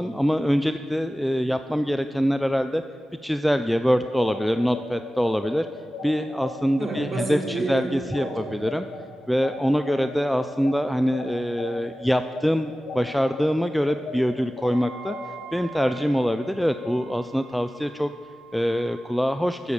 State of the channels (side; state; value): both; normal; correlation 0.96